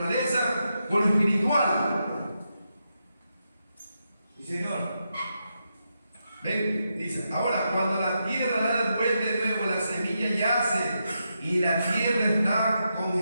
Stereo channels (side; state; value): both; inverted; correlation -0.85